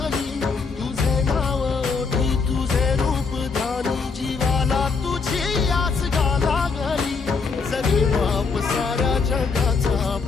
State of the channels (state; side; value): quieter; right; 4.8 dB